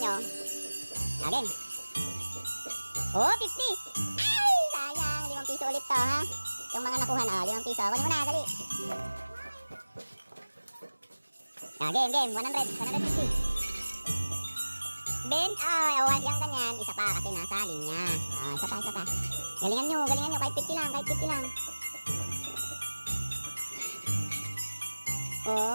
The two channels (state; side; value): inverted; both; correlation -1.00